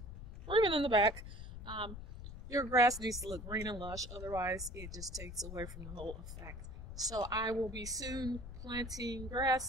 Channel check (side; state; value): left; noise; rumble, 10 dB below the sound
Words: or even in the back, your grass needs to look green and lush, otherwise it just takes away from the whole effect. So I will be soon planting